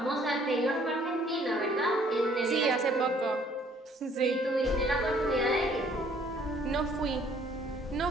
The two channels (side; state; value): both; normal; correlation 0.60